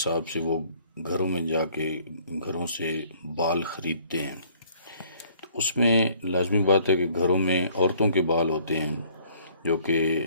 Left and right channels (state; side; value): inverted; both; correlation -0.60